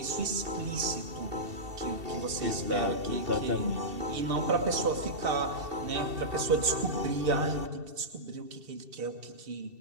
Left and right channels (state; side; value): late; left; 2.7 ms